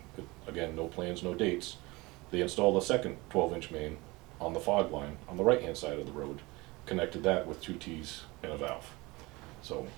but again, no plans, no dates, they installed a second 12-inch main on the fog line on the right-hand side of the road, connected that with 2 T's and a valve. So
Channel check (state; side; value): quieter; left; 23.3 dB